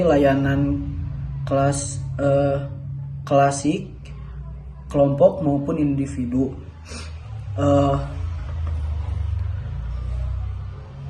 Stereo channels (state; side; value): identical; both; correlation 1.00